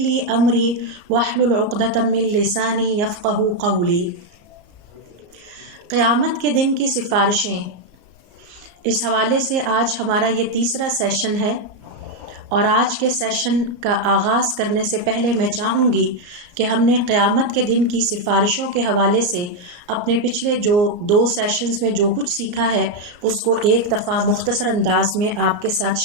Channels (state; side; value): late; left; 34 ms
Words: امری واحلل عقدۃ من لسانی یفقهوا قولی. قیامت کے دن کی سفارشیں، اس حوالے سے آج ہمارا یہ تیسرا سیشن ہے، اور آج کے سیشن کا آغاز کرنے سے پہلے میں چاہوں گی کہ ہم نے قیامت کے دن کی سفارشوں کے حوالے سے اپنے پچھلے جو 2 سیشنز میں جو کچھ سیکھا ہے اس کو ایک دفعہ مختصر انداز میں آپ کے ساتھ